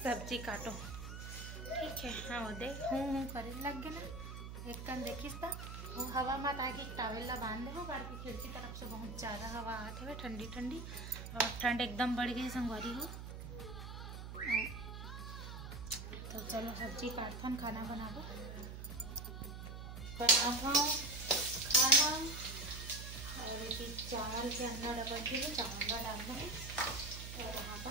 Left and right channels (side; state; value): right; noise; hum, 8 dB below the sound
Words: सब्जी काटो ठीक है। हाँ वो देख हूँ करे लग गए ना। एक कन देखिस ता वो हवा मत आके टावल ला बांध दे बाहर की खिड़की तरफ से बहुत ज़्यादा हवा आते हुए ठंडी ठंडी, और ठंड एकदम बढ़ गई संगवारी हो। तो चलो सब्जी काटथन, खाना बनाबो खाना। और ये चावल के अंदर डबल के चावल डालना है। और यहाँ